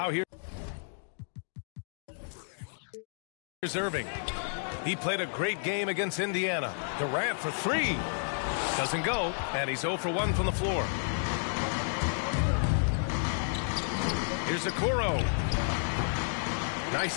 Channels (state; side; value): silent; right; digital silence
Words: here's Irving. He played a great game against Indiana. Durant for 3. Doesn't go, and he's 0 for 1 from the floor. Here's Okoro.